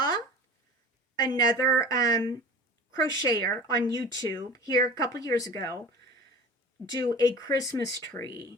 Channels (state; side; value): normal; both; correlation 0.39